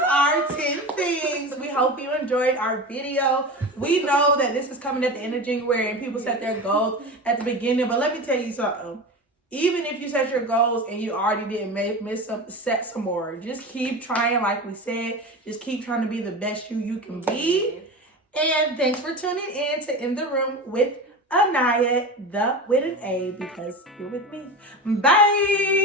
our 10 things. We hope you enjoyed our video. We know that this is coming at the end of January and people set their goals at the beginning, but let me tell you something. Even if you set your goals and you already didn't set some more. Just keep trying, like we said. Just keep trying to be the best you can be. And thanks for tuning in to In the Room with Anaya, with an A, because you're with me. Bye.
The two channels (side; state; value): both; normal; correlation 0.27